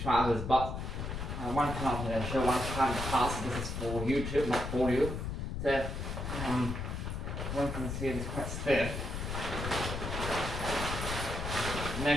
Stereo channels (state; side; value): noise; left; rumble, 4 dB below the sound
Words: But one cannot show one kind of pass. This is for YouTube, not for you. So one can see it's quite stiff.